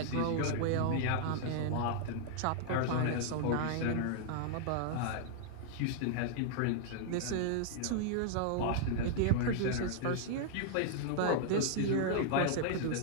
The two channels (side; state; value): both; different; correlation -0.01